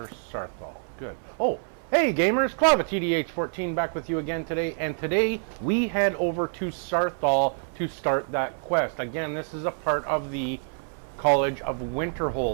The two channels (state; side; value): silent; left; 58 dB below the other